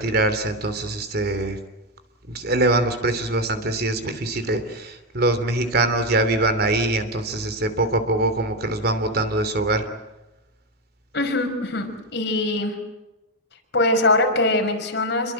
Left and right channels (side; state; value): both; normal; correlation 0.07